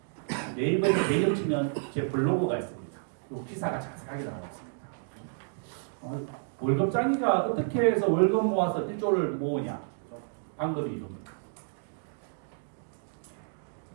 네이버에서 배경 치면 제 블로그가 있습니다. 이 기사가 자세하게 나와 있습니다. 월급장이가 어떻게 해서 월급 모아서 1조를 모으냐? 방법이 이겁니다.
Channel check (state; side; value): silent; left; digital silence